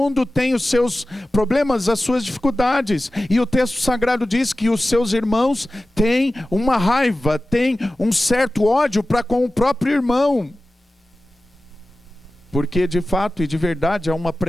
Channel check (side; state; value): both; normal; correlation 0.95